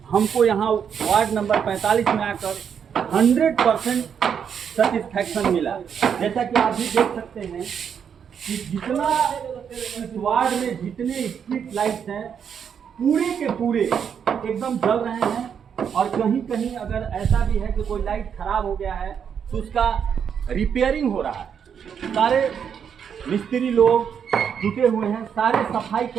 हमको यहाँ वार्ड नंबर 45 में आकर 100% सेटिस्फैक्शन मिला। जैसा कि आप भी देख सकते हैं कि जितना इस वार्ड में जितने स्ट्रीट लाइट्स हैं पूरे के पूरे एकदम जल रहे हैं। और कहीं कहीं अगर ऐसा भी है कि कोई लाइट खराब हो गया है तो उसका रिपेयरिंग हो रहा है। सारे मिस्त्री लोग जुटे हुए हैं, सारे सफाई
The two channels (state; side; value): quieter; left; 7.6 dB